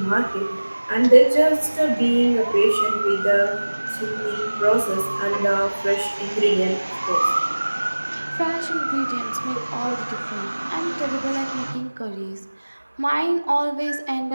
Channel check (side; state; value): both; inverted; correlation -1.00